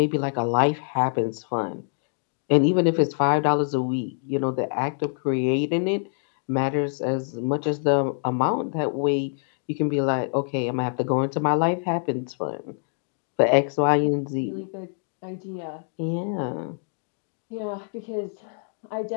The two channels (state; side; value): silent; right; 61 dB below the other